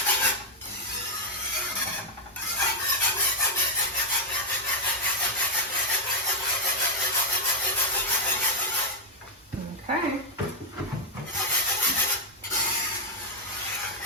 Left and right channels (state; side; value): normal; both; correlation 0.00